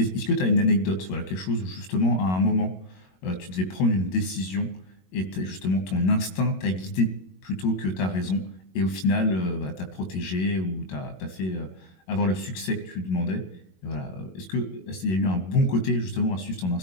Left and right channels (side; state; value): right; late; 22 ms